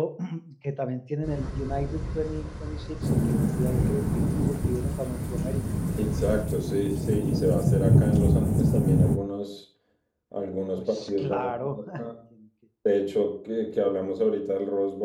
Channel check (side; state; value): both; identical; correlation 1.00